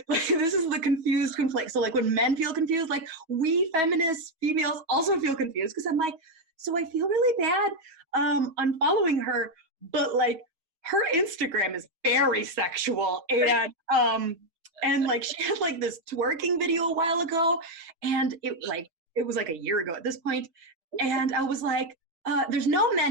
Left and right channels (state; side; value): late; left; 6.6 ms